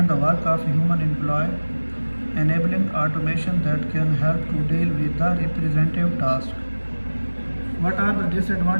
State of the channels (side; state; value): both; inverted; correlation -1.00